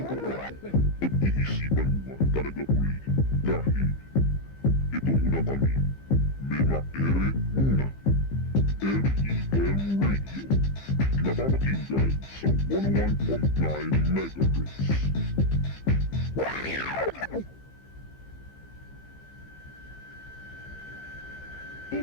about it. Pag-iisipan mo talaga uli dahil ito muna kami. Mema Ere muna. M.E.M. Radio. Napapakinggan sa 101.9 MHz.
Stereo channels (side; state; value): right; late; 15 ms